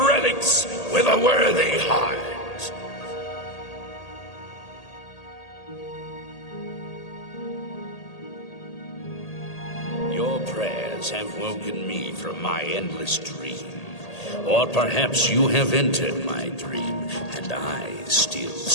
with a worthy heart. Your prayers have woken me from my endless dream. Or perhaps you have entered my dream, and I still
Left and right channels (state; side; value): late; right; 1.8 ms